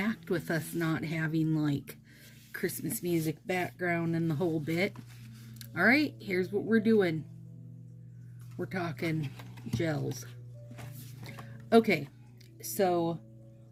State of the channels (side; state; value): both; identical; correlation 1.00